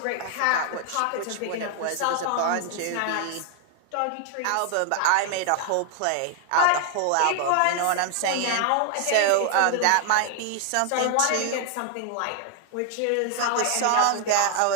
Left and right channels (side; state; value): both; different; correlation 0.00